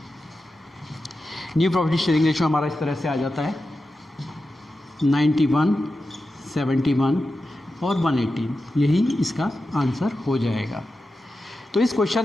न्यू प्रॉफिट शेयरिंग रेशियो हमारा इस तरह से आ जाता है 91, 71 और 118, यही इसका आंसर हो जाएगा। तो इस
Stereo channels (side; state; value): both; normal; correlation 0.91